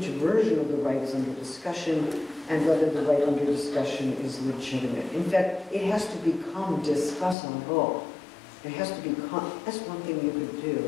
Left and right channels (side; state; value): right; drops out; at 7.4 s